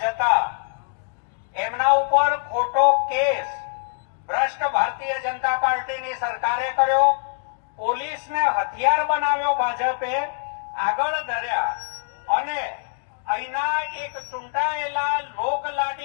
જતા એમના ઉપર ખોટો કેસ ભ્રષ્ટ ભારતીય જનતા પાર્ટીની સરકારે કર્યો, પોલીસને હથિયાર બનાવ્યો ભાજપે, આગળ ધર્યા અને અહીંના એક ચૂંટાયેલા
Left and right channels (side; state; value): right; silent; digital silence